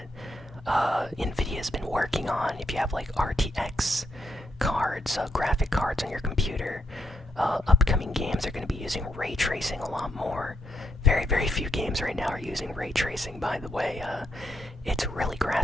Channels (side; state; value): both; normal; correlation 0.79